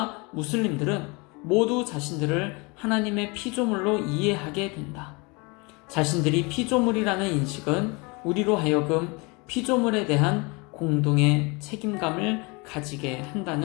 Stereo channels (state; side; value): quieter; right; 28.3 dB